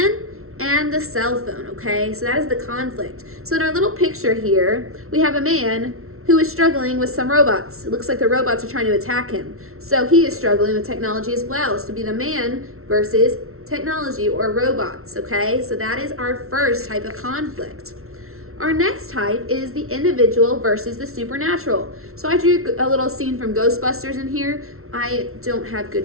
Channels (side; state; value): left; late; 0.62 ms